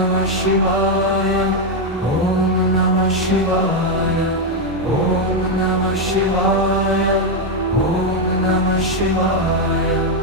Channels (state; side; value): normal; both; correlation 0.04